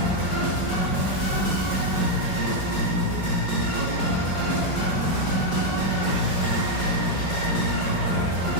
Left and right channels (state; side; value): late; right; 5.1 ms